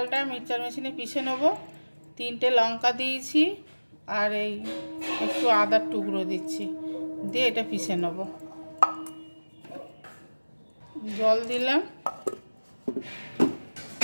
মিক্সচার মেশিনে পিষে নেব। 3টে লঙ্কা দিয়েছি আর এই একটু আদার টুকরো দিচ্ছি, দিয়ে এটা পিষে নেব। জল দিলাম।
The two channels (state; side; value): inverted; both; correlation -1.00